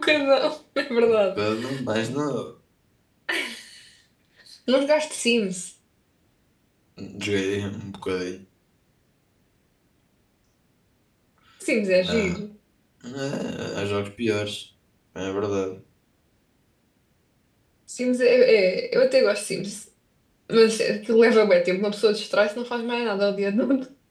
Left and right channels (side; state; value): both; identical; correlation 1.00